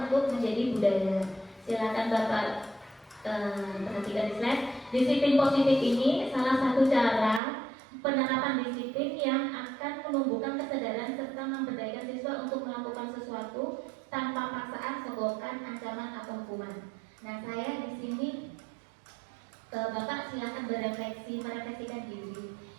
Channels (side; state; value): left; drops out; at 7.4 s